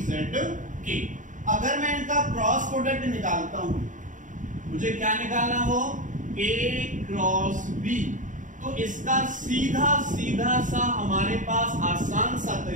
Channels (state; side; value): late; left; 0.37 ms